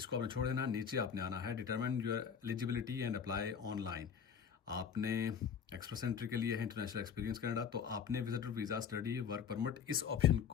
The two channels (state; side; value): quieter; right; 7.2 dB